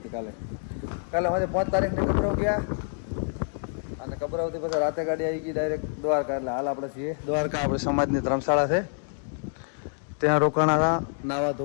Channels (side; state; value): right; silent; digital silence